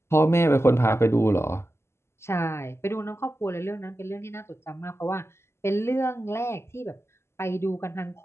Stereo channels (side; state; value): right; late; 0.13 ms